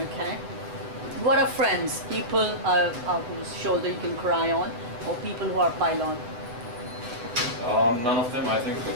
Okay. What are friends? People whose shoulder you can cry on, or people who are pile-on? None of them. I think a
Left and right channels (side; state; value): left; late; 8.2 ms